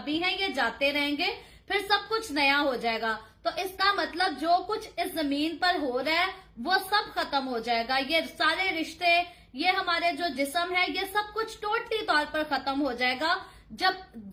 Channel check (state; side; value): identical; both; correlation 1.00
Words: हैं ये जाते रहेंगे, फिर सब कुछ नया हो जाएगा, तो इसका मतलब जो कुछ इस जमीन पर हो रहा है वो सब खत्म हो जाएगा। ये सारे रिश्ते, ये हमारे जो जिस्म है, ये सब कुछ टोटली तौर पर खत्म हो जाएगा। जब